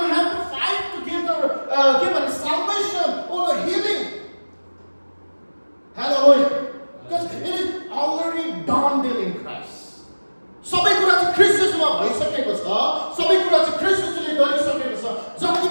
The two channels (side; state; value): both; inverted; correlation -1.00